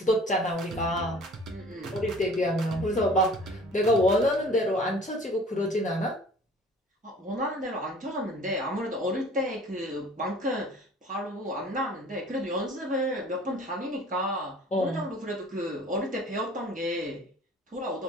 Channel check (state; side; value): normal; both; correlation 0.48